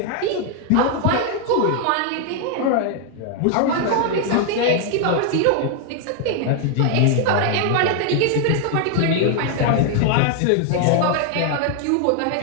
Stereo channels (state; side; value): different; both; correlation 0.00